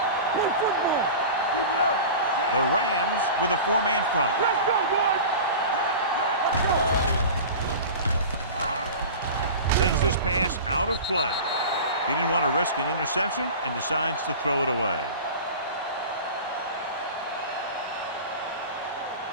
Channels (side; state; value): both; inverted; correlation -0.34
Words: Play football. Keep it up. The Rams with a 4-man front. Let's go, boys. Sends this pass out of play. He didn't want to risk an interception and decides to throw it away.